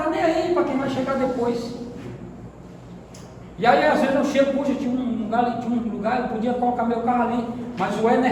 nem aí para quem vai chegar depois. E aí às vezes eu chego, puxa, tinha um lugar, eu podia colocar meu carro ali, mas o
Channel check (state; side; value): identical; both; correlation 1.00